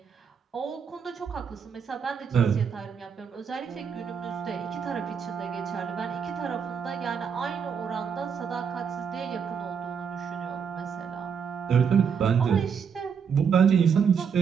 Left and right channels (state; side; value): quieter; left; 6.8 dB